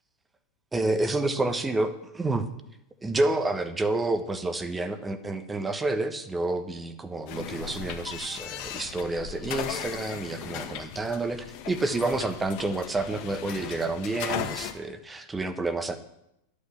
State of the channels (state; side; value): normal; both; correlation 0.76